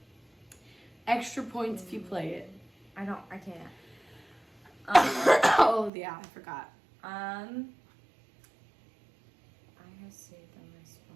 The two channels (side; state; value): left; drops out; at 5.9 s